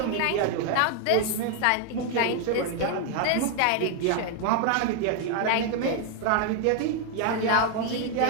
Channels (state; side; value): different; both; correlation 0.00